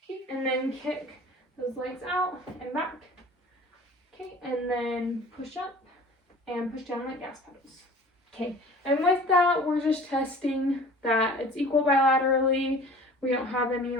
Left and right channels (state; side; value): normal; both; correlation 0.45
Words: Okay, and then kick those legs out and back. Okay, and then push up and push down like gas pedals. Okay, and with that, we're just testing that it's equal bilaterally. We don't have any